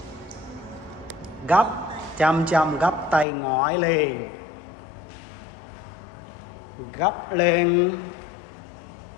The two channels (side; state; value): right; drops out; at 3.2 s